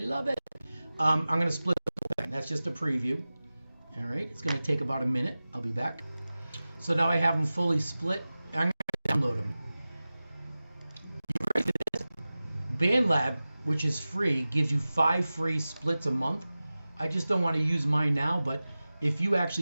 it. I'm going to split the thing. That's just a preview. All right. It's going to take about a minute. I'll be back. So now I have them fully split. I'm going to download them. BandLab, which is free, gives you 5 free splits a month. I just don't want to use mine now, but if you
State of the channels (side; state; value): both; inverted; correlation -0.97